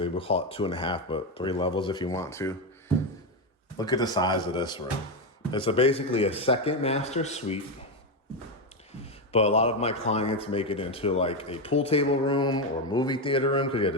we'll call it 2.5, but 3 levels if you want to. Look at the size of this room. It's basically a second master suite, but a lot of my clients make it into like a pool table room or movie theater room because you have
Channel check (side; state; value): both; normal; correlation 0.10